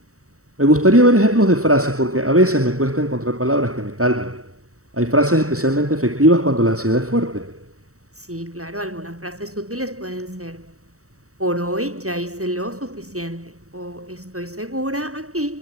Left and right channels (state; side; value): late; left; 0.65 ms